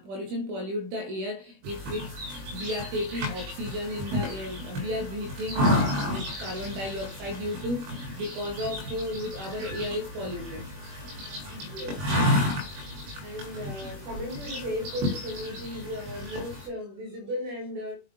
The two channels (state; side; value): late; left; 21 ms